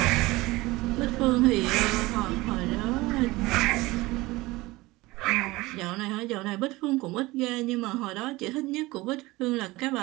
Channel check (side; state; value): left; quieter; 20.5 dB